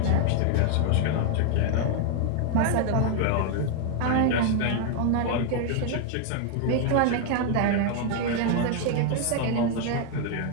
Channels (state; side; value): different; both; correlation 0.00